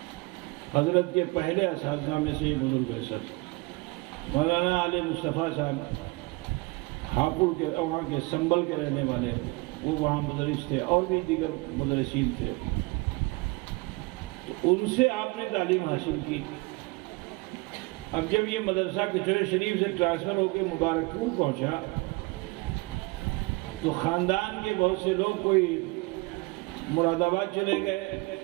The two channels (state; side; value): quieter; left; 25.1 dB